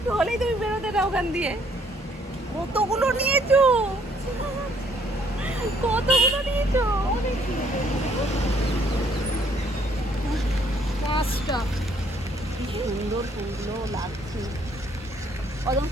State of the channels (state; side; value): normal; both; correlation 0.65